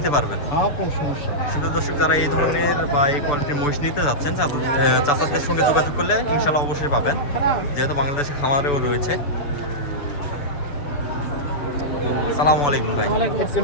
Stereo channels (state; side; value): late; right; 6.9 ms